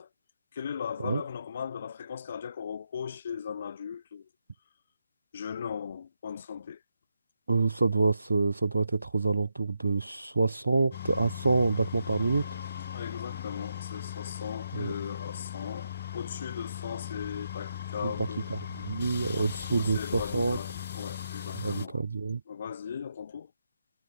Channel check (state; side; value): inverted; both; correlation -0.81